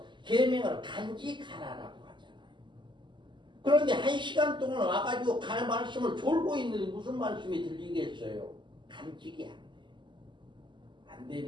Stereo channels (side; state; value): left; late; 0.23 ms